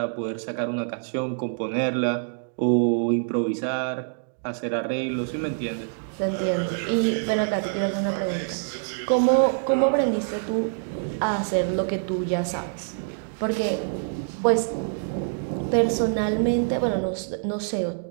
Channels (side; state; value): left; silent; digital silence